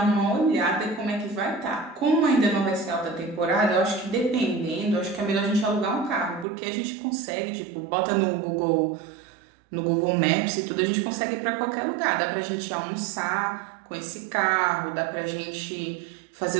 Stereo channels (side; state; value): left; drops out; at 6.5 s